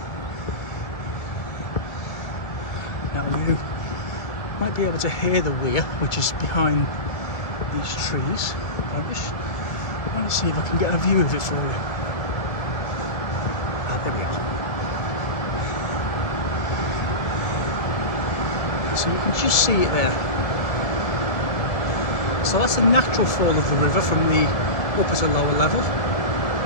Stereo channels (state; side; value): late; right; 1.5 ms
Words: Now you might be able to hear the weir, which is behind these trees. I want to see if I can get a view of it for you. There we are. So you can just see it there. So that's the natural fall of the river from the upper to lower level,